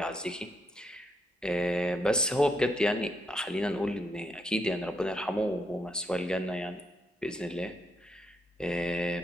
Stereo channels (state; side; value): normal; both; correlation 0.77